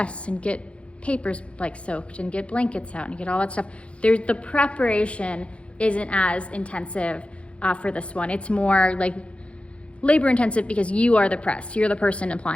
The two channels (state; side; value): late; right; 0.061 ms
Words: and get papers like soaked and get blankets out and get all that stuff, the preparation isn't as intensive for this one. It's more like labor intensive because you are the press, you're the person